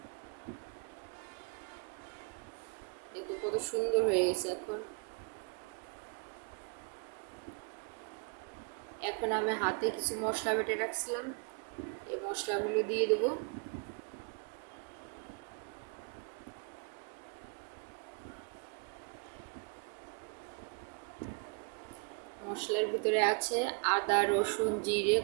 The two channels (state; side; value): quieter; left; 35.6 dB